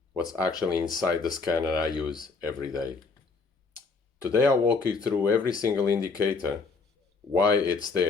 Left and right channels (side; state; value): right; quieter; 4.4 dB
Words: What's actually inside the scanner I use every day. Today I'll walk you through every single indicator, why it's